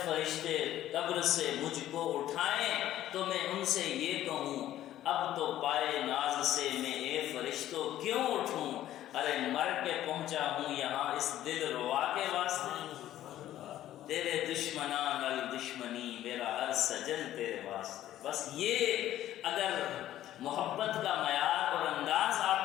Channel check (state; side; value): quieter; right; 13.0 dB